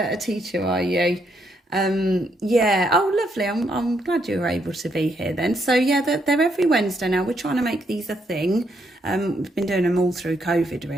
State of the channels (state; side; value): normal; both; correlation 0.75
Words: teacher, are you? Yeah. Oh, lovely. I'm glad you were able to be here then. So, yeah, they're every Wednesday now. We're trying to make these a thing. We've been doing them all through COVID,